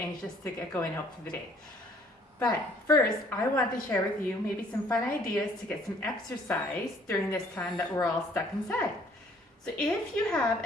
to get going out for the day. But first, I want to share with you maybe some fun ideas to get some exercise during this time that we're all stuck inside. So if you have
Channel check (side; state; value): both; normal; correlation 0.60